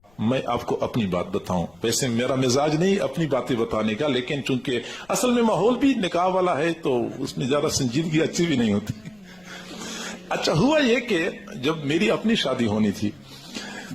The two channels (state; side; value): noise; left; rumble, 30 dB below the sound